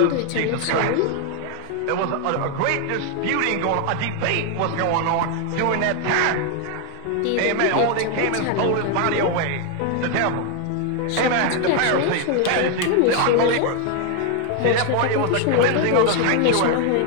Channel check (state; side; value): different; both; correlation 0.01